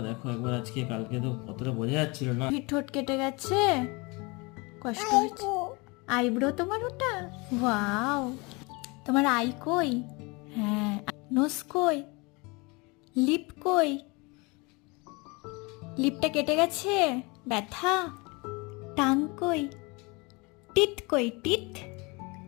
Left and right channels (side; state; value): right; quieter; 27.0 dB